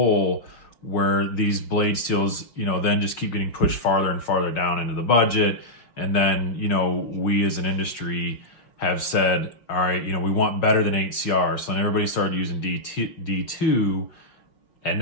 where these blade steels, then just keep getting pushed farther and farther down into the budget. And then, we as an industry have said, all right, we want better than 8CR. So then everybody started using D2, and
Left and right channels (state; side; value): late; right; 6.2 ms